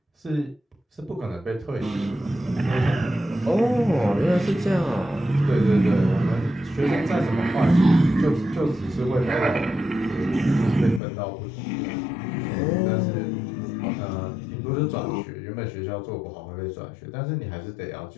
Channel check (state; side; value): drops out; right; at 11.0 s